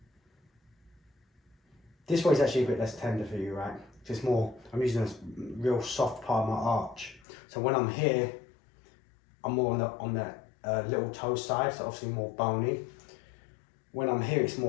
This way is actually a bit less tender for you, right? It's more, I'm using a real soft part of my arch. So when I'm here, I'm more on the little toe side, so obviously more bony. When I'm here, it's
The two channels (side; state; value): right; drops out; at 7.2 s